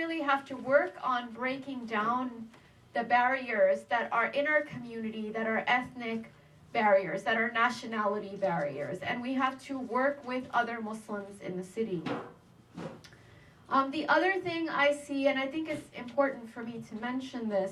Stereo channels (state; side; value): identical; both; correlation 1.00